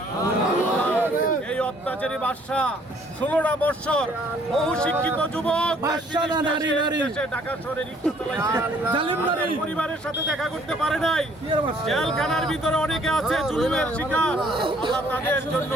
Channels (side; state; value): both; normal; correlation 0.62